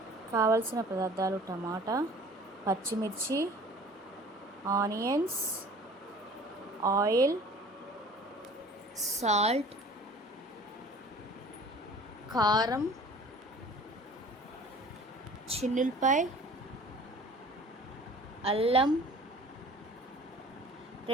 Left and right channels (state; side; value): normal; both; correlation 0.46